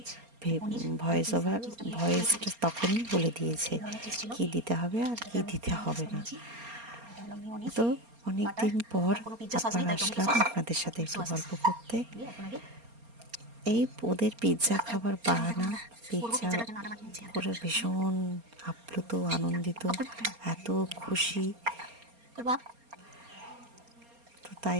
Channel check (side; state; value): left; late; 4.3 ms